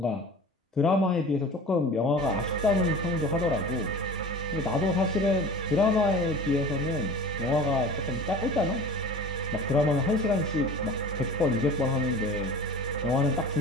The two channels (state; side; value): normal; both; correlation 0.39